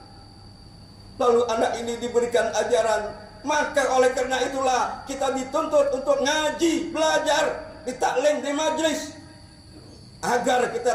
Lalu anak ini diberikan ajaran. Maka oleh karena itulah kita dituntut untuk ngaji, belajar, ditaklim di majlis, agar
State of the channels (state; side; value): identical; both; correlation 1.00